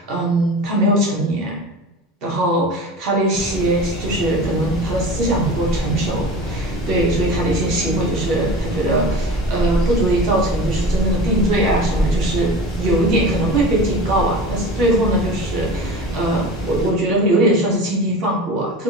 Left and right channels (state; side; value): normal; both; correlation 0.34